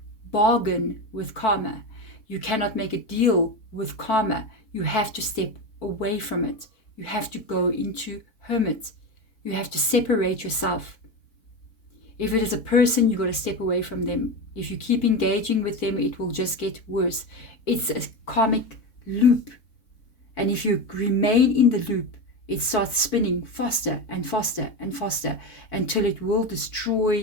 bargain with karma. You cannot make a deal with karma. You have to step away from it. You have to go into hermit. You have to separate yourself. If it is a person, you've got to step away from them. If you keep engaging with them, it will just get worse. It's a karmic loop. And if you remain in the loop, it starts spinning faster and faster and faster until it will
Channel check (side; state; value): right; late; 4.1 ms